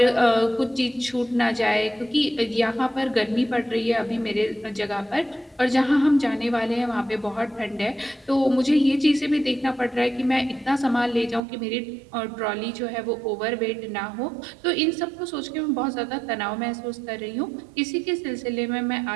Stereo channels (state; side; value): drops out; left; at 11.4 s